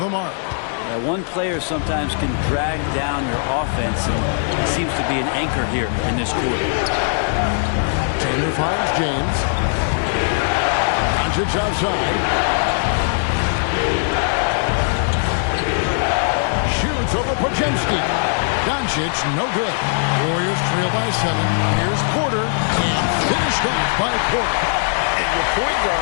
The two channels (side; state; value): right; silent; digital silence